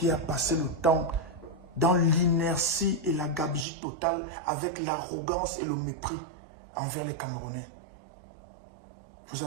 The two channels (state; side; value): drops out; left; at 3.7 s